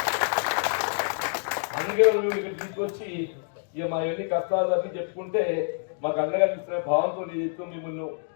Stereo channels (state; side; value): silent; right; digital silence